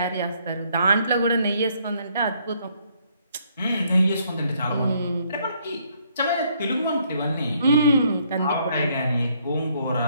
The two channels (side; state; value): both; inverted; correlation -0.69